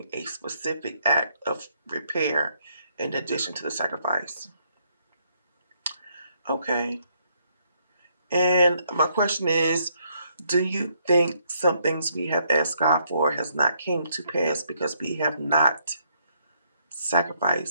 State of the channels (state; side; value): inverted; both; correlation -0.72